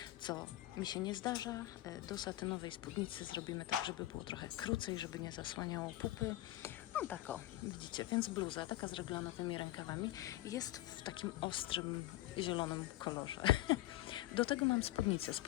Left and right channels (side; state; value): right; quieter; 16.0 dB